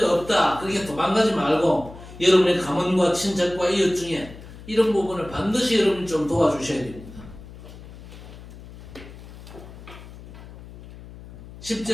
없다 그렇게 도망가지 말고 여러분의 가문과 친척과 이웃 중에 이런 부분을 반드시 여러분이 좀 도와주셔야 됩니다.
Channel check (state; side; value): noise; left; hum, 16 dB below the sound